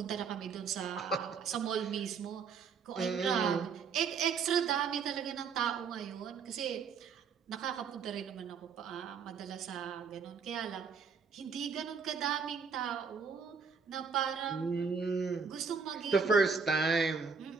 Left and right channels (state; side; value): quieter; left; 5.7 dB